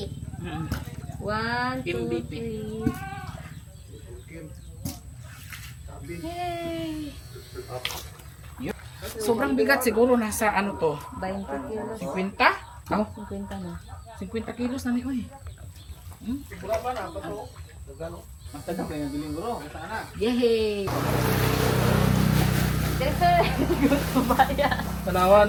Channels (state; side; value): identical; both; correlation 1.00